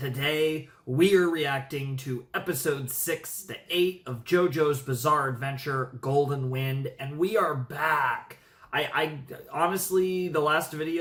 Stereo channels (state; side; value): identical; both; correlation 1.00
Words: we are reacting to episode 6 to 8 of JoJo's Bizarre Adventure Golden Wind, and we are back. I honestly, the last